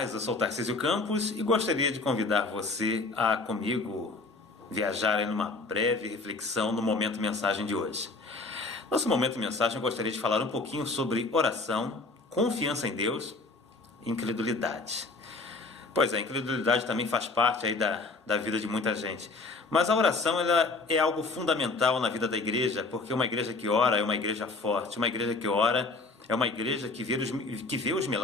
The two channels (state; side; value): quieter; right; 3.5 dB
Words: Eu sou Tarcísio Campos e gostaria de convidar você a comigo viajar em uma breve reflexão no Momento Mensagem de hoje. Nosso Momento Mensagem eu gostaria de falar um pouquinho sobre oração, confiança em Deus e incredulidade. Pois é, a incredulidade também faz parte aí da vida de muita gente. Mas a oração ela é algo fundamental na vida da igreja, porque uma igreja que ora é uma igreja forte, uma igreja que ora é uma igreja que vê os